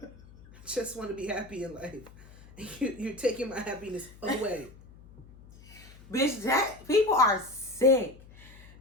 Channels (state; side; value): noise; left; hum, 21 dB below the sound